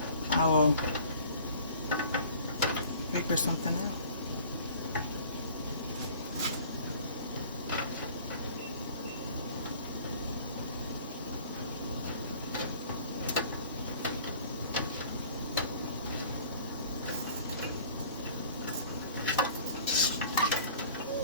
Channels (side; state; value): both; inverted; correlation -0.48